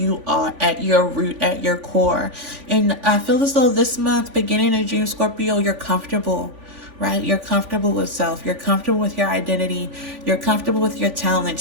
are at your root, at your core. And I feel as though this month, beginning of June, Scorpio, you're comfortable, right? You're comfortable with self. You're comfortable with your identity. You're comfortable with your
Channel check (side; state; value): left; late; 3.5 ms